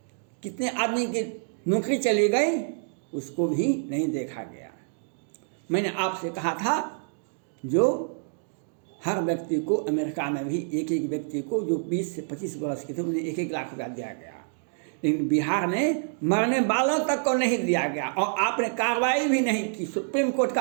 कितने आदमी की नौकरी चली गई, उसको भी नहीं देखा गया। मैंने आपसे कहा था जो हर व्यक्ति को, अमेरिका में भी एक एक व्यक्ति को जो 20 से 25 वर्ष के थे उन्हें 1-1 लाख रुपया दिया गया, लेकिन बिहार में मरने वालों तक को नहीं दिया गया। और आपने कार्रवाई भी नहीं की, सुप्रीम कोर्ट का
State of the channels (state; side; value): silent; left; digital silence